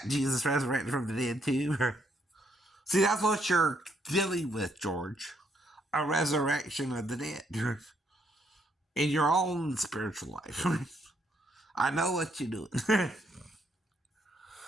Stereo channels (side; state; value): both; normal; correlation 0.73